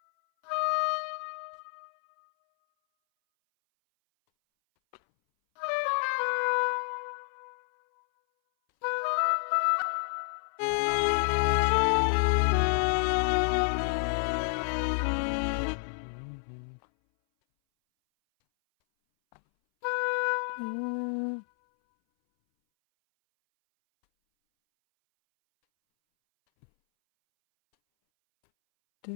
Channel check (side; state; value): right; silent; 59 dB below the other